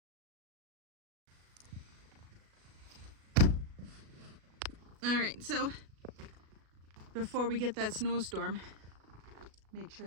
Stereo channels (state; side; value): late; left; 37 ms